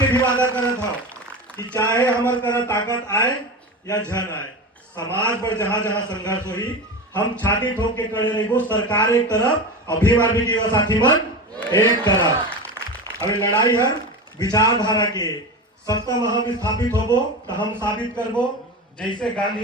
भी वादा करत था कि चाहे हमारे तरह ताकत आए या झन आए, समाज पर जहां जहां संघर्ष हुई हम छाती ठोक के खड़े रहेंगे। सरकार एक तरफ, अभिमान भी युवा साथी मन एक तरफ। अभी लड़ाई हर विचारधारा के सत्ता में हम स्थापित होबो तो हम साबित करबो, जैसे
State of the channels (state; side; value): normal; both; correlation 0.25